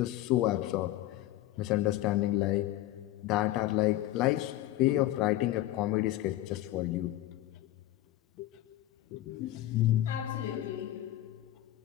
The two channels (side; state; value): right; quieter; 14.9 dB